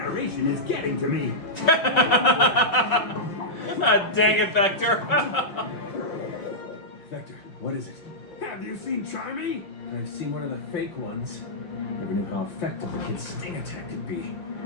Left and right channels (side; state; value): right; late; 5.3 ms